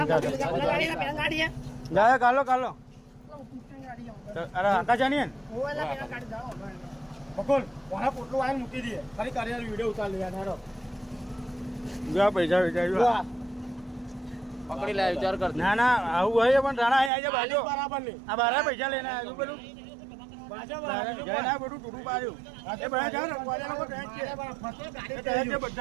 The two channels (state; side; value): drops out; left; at 17.1 s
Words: જાય કાલો કાલો અરે આકા જાની બકુલ કોના પોટલું આવીને મૂકી દઈએ ફરી કરી વિડીયો ઉતાર લે યાર જો પૈસા વિચાર પકડી લે વિચાર કર ના ના આવું હોય પણ રાણા અહીં આવી બાજુ બરાબર નહીં આ બારા પૈસા લઈને આવ્યું બધું જય ના બધું ટૂટું પાડ્યું એ બધા જાવ ને કોલેજ લોકો ટેન્શન છે